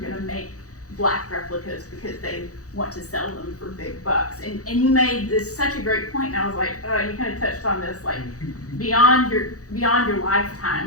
make black replicas because they want to sell them for big bucks. And you made this such a great point, and I was like, you kind of touched on this, like, beyond your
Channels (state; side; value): late; right; 0.66 ms